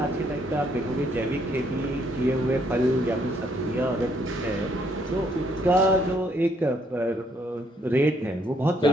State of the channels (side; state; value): both; normal; correlation 0.69